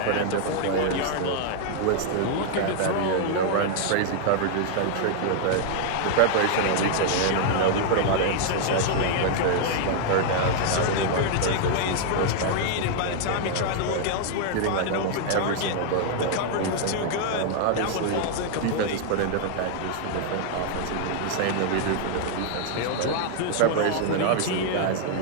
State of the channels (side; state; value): both; different; correlation 0.00